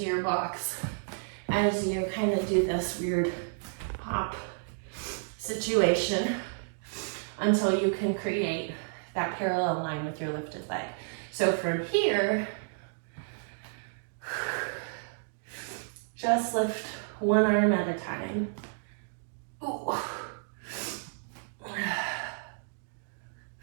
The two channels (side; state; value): left; silent; digital silence